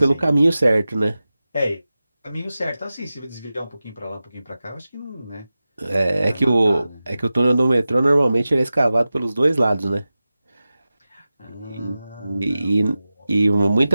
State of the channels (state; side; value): inverted; both; correlation -0.95